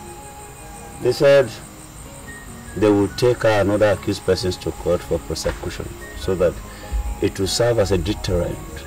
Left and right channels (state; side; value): identical; both; correlation 1.00